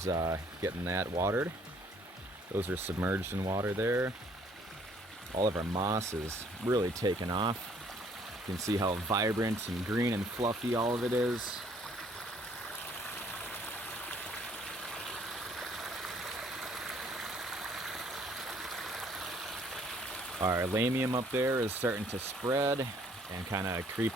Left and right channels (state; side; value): normal; both; correlation 0.62